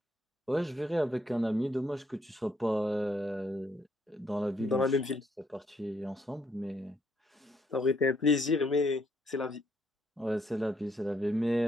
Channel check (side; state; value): both; normal; correlation 0.71